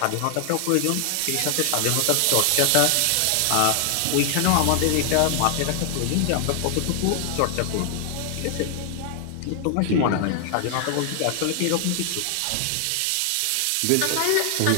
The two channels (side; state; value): both; different; correlation 0.00